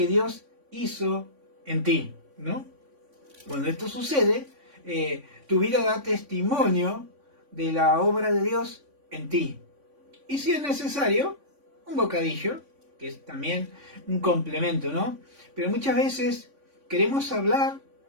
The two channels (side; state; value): left; late; 3.5 ms